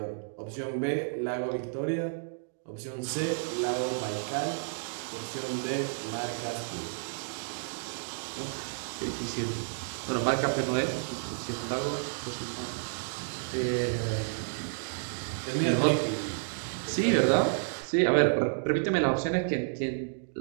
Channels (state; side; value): silent; left; digital silence